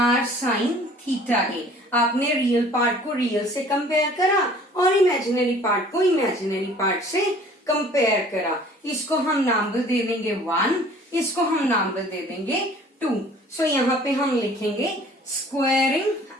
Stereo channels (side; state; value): both; normal; correlation 0.51